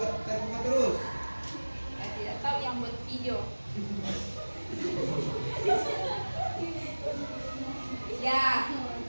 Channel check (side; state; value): both; inverted; correlation -1.00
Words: terbuka terus? Saya tidak tahu yang buat video. Ya,